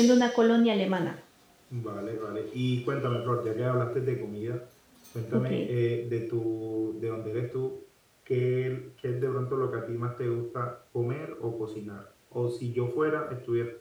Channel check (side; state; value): both; identical; correlation 1.00